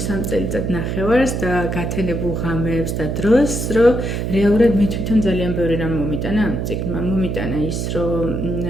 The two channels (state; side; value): noise; right; hum, 2 dB below the sound